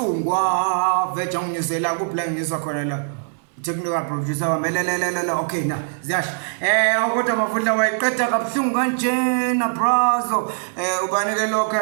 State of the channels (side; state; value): left; silent; digital silence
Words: veja unginyusela kuphi la nginyuswa khona la. Technical producer wamelelelele okay na ziyasho kodwa Mavundla wayiqeda kabuhlungu kanjena brazo ubanike